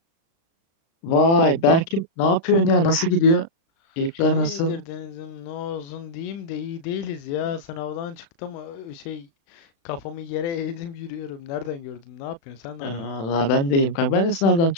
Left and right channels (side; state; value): right; late; 36 ms